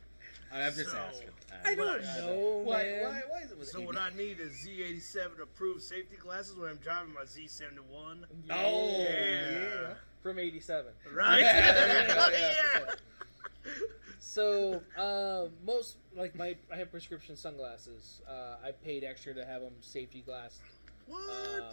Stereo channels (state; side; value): inverted; both; correlation -1.00